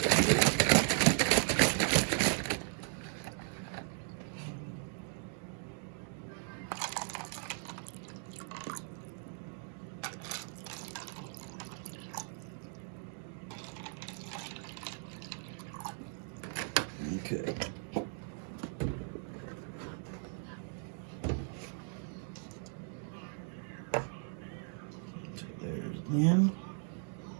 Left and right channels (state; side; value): silent; left; 53 dB below the other